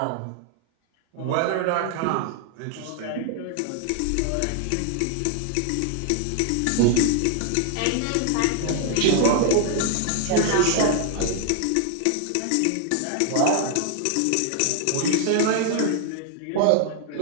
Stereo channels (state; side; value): different; both; correlation 0.00